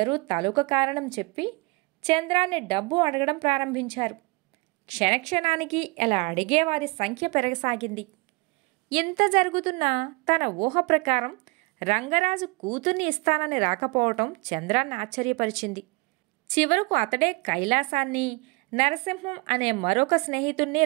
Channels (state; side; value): quieter; left; 26.5 dB